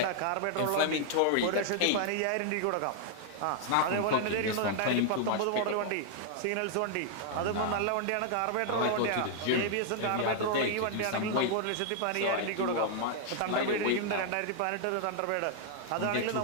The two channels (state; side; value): different; both; correlation -0.01